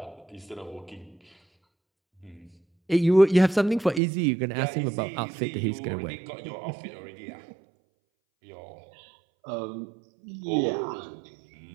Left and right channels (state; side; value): drops out; left; at 4.0 s